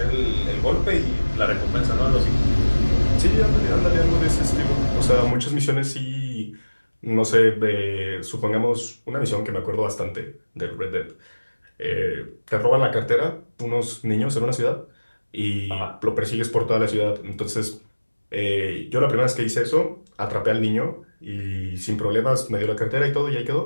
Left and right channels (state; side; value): inverted; both; correlation -1.00